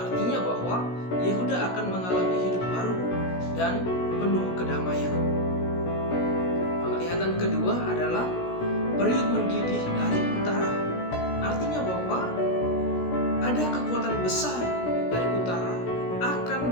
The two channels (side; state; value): right; late; 16 ms